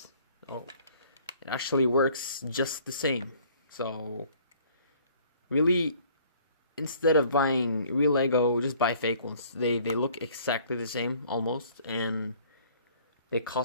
Oh, it actually works just the same. So, really, instead of buying real Lego, just buy fake ones. They look exactly the same, almost, and they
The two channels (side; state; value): both; inverted; correlation -0.56